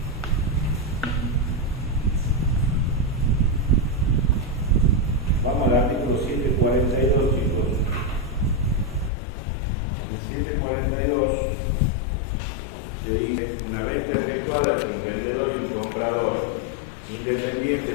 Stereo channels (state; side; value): drops out; right; at 9.1 s